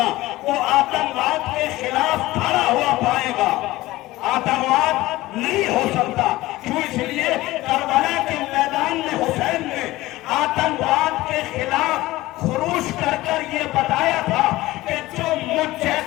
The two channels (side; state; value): right; quieter; 17.9 dB